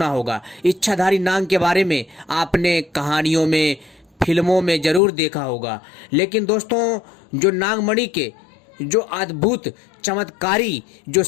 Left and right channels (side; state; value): right; drops out; at 5.0 s